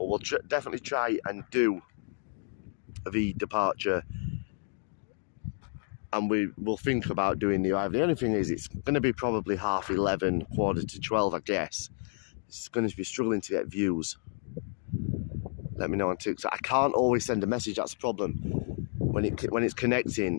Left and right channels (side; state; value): right; silent; 57 dB below the other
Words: we'll definitely try and do the departure, and we'll think about doing the arrival. The only thing is, it's going to be probably 11:30, 11:45, I guess. It's going to be struggling to get views. Let me know on TikTok. I can't always send a message, that's the problem. When it's